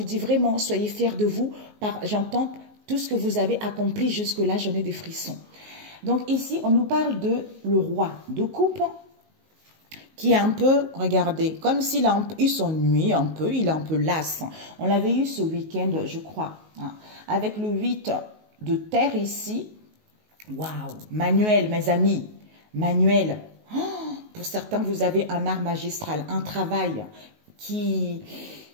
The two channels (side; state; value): left; late; 19 ms